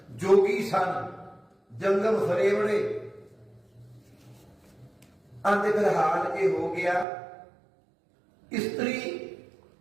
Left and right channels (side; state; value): left; drops out; at 7.1 s